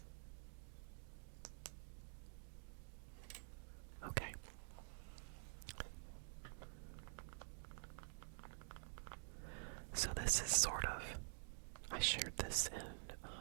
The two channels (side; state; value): left; silent; digital silence